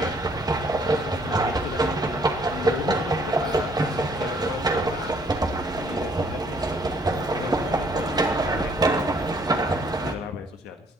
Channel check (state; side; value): normal; both; correlation 0.63